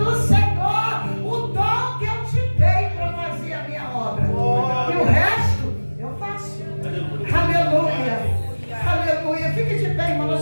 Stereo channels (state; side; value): inverted; both; correlation -1.00